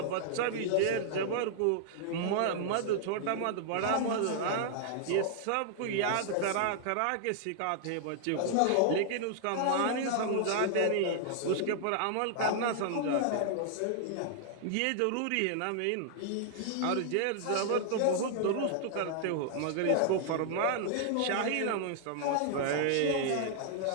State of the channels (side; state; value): both; different; correlation -0.01